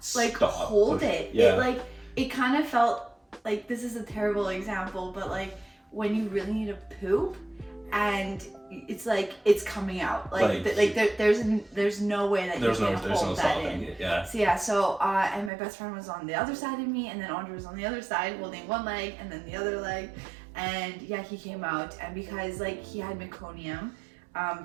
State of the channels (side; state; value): left; drops out; at 15.5 s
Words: like hold it. Yeah. It kind of felt like, this is a terrible example, but like when you really need to poop, and it's like it's coming out. There's no way that you can hold that in. It, yeah. So yeah, and my best friend was on the other side of me, and then Andrey was on the other side holding one leg and then the other leg, and yeah, he came out, and because like he had meconium,